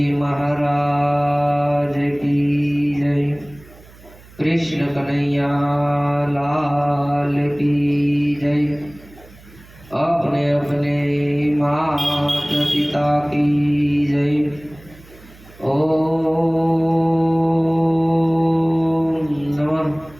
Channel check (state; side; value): noise; right; hum, 23 dB below the sound